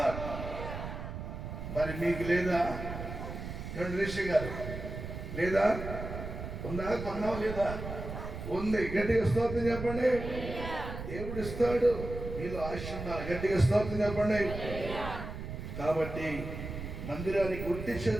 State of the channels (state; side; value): noise; right; rumble, 7 dB below the sound